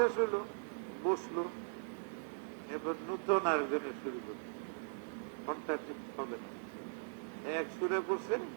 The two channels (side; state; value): left; silent; digital silence